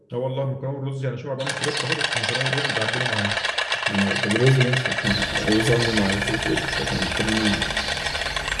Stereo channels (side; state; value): both; identical; correlation 1.00